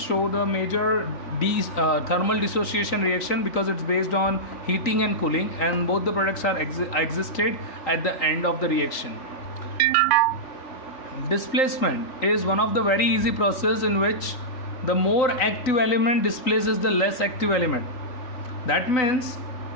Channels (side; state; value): right; late; 3.8 ms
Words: show the major thermal dissociation reaction, because it's based on heating and cooling, and both the products are existed at the end of the reaction. Displacement is one of the very easy process in which the more active element displaces the less active element. That means